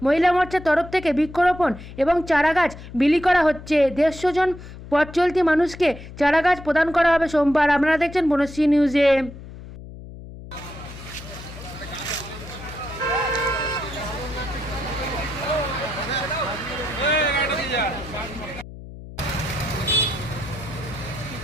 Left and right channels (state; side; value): noise; left; hum, 14 dB below the sound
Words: মহিলা মোর্চার তরফ থেকে বৃক্ষরোপণ এবং চারাগাছ বিলি করা হচ্ছে। 150 জন পথ চলতি মানুষকে চারাগাছ প্রদান করা হবে সোমবার। আপনারা দেখছেন বনশ্রী নিউজে।